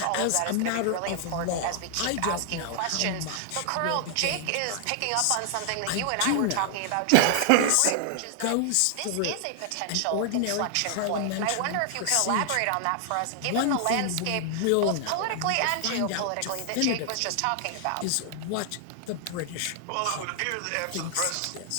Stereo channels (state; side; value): different; both; correlation 0.00